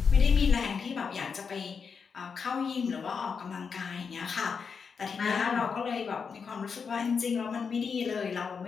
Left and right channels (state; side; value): quieter; right; 5.8 dB